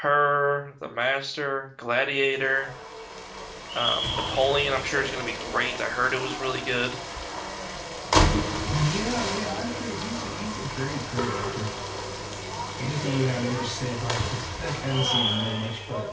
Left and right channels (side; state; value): both; identical; correlation 1.00